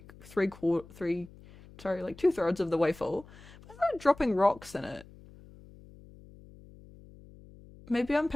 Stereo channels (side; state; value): left; noise; hum, 21 dB below the sound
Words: 2/3 of the way full. If I started dropping rocks in it, maybe I'm